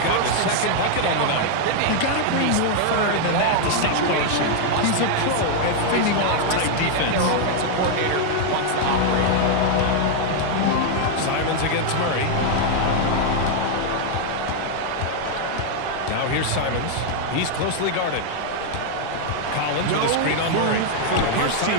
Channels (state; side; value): different; both; correlation 0.00